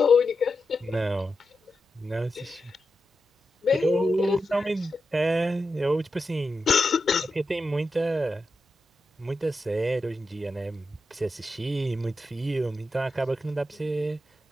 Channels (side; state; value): both; normal; correlation 0.89